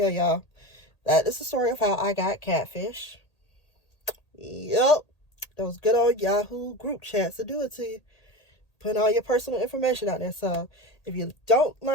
y'all. That is the story of how I got catfish. Yep. Those good old Yahoo group chats to do it to you. Putting all your personal information out there. So if you don't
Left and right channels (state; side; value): late; right; 1.8 ms